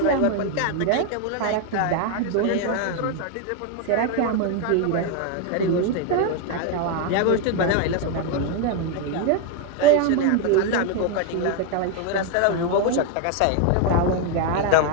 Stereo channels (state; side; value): different; both; correlation 0.01